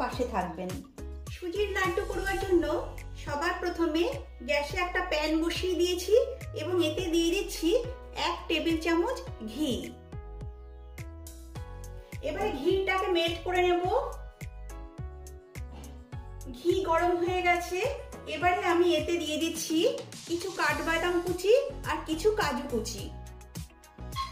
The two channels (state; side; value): identical; both; correlation 1.00